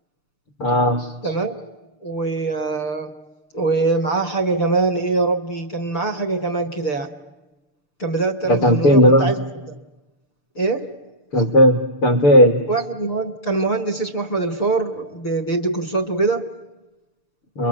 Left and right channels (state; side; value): late; right; 6.8 ms